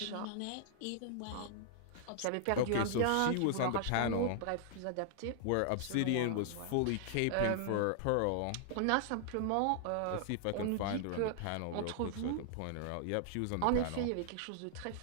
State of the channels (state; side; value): different; both; correlation -0.01